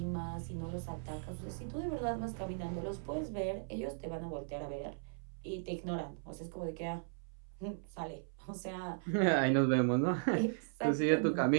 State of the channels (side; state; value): left; silent; 53 dB below the other